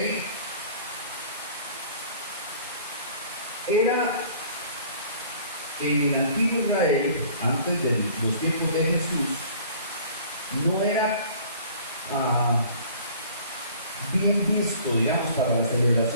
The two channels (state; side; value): inverted; both; correlation -0.50